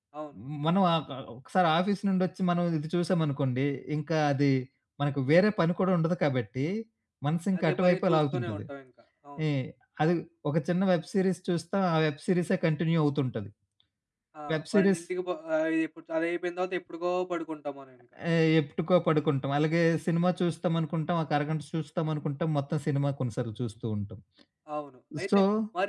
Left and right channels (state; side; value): identical; both; correlation 1.00